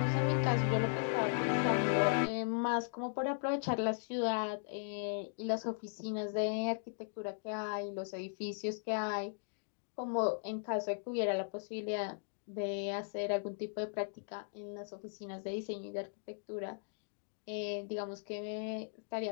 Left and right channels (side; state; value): right; silent; digital silence